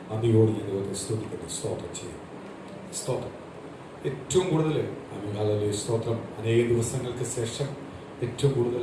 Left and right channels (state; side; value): identical; both; correlation 1.00